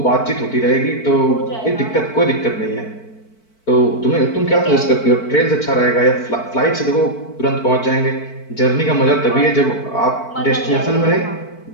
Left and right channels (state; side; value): late; right; 4.5 ms